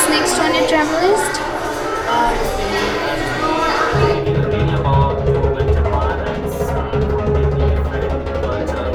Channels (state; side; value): identical; both; correlation 1.00